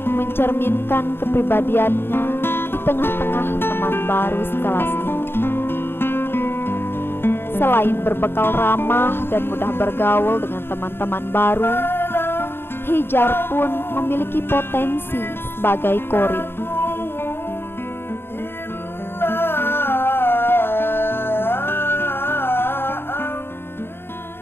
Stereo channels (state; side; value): late; right; 0.11 ms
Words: mencerminkan kepribadiannya di tengah-tengah teman baru sekelasnya. Selain berbekal ramah dan mudah bergaul dengan teman-teman baru, Hijar pun memiliki potensi sebagai kori.